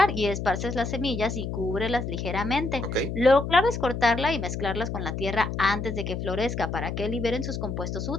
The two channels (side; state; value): left; noise; hum, 4 dB below the sound